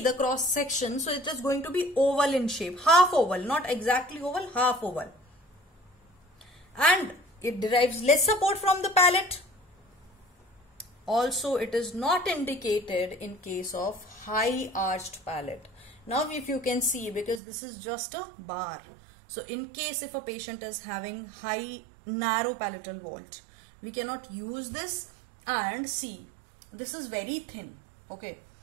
the cross section, so it is going to be oval in shape, half oval, not exactly oval, half oval. And it derives less support from the palate. Also, it is not indicated in case of high arched palate. Now, if you can see, because this is just a bar. So, in case if a patient is having high narrow palatal vault, we cannot use this. And see, this is very thin. Okay,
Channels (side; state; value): left; drops out; at 17.4 s